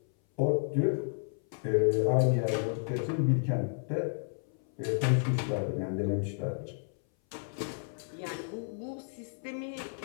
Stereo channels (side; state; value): right; silent; 57 dB below the other